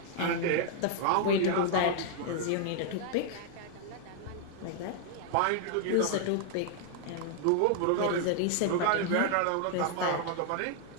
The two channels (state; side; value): different; both; correlation 0.00